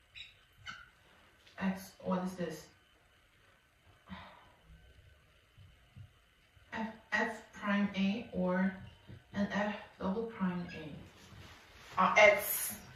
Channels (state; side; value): identical; both; correlation 1.00